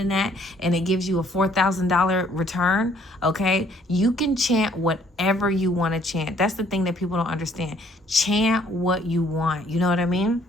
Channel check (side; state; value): both; normal; correlation 0.63